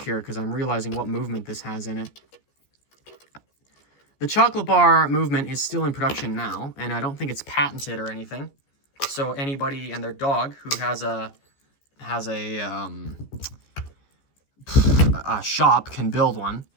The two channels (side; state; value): right; late; 14 ms